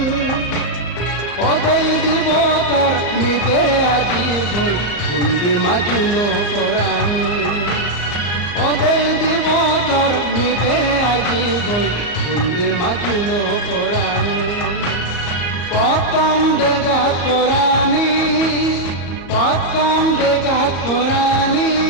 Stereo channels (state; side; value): late; right; 34 ms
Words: ওদেই দিবতর নিজে আজি বই কুন্দি মাজুলো কোরআন ওদেই দিবতর নিজে আজি বই কুন্দি মাজুলো কোরআন পতম দেগাত কোরআনি পতম দেগাত কোরআনি